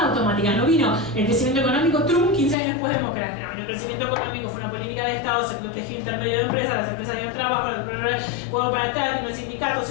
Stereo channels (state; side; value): drops out; right; at 2.6 s